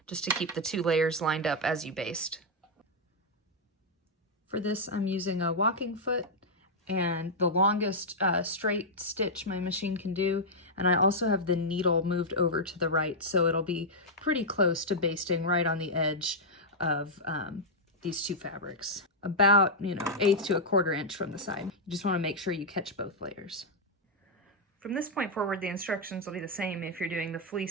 just to keep the 2 layers lined up as you baste. For this, I'm using a walking foot and the longest straight stitch my machine can do, and I also have the needle moved over to the right, so it'll be pretty close to basting right on the edge of these 2 fabrics. About, 1/8 to 1/4 inch from the side. You just want to make sure you catch both layers. From this point forward, the instructions will be the same if you're doing the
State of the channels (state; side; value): normal; both; correlation -0.04